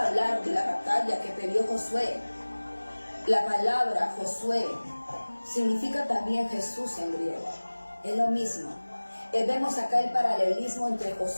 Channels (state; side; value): inverted; both; correlation -1.00